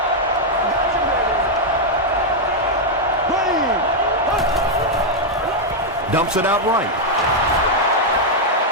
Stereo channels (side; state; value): both; normal; correlation -0.01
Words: Dumps it out right.